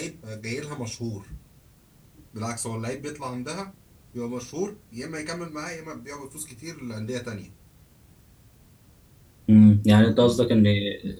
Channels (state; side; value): identical; both; correlation 1.00